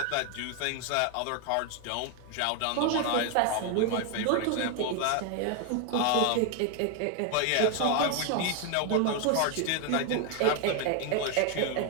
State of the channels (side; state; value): both; different; correlation 0.01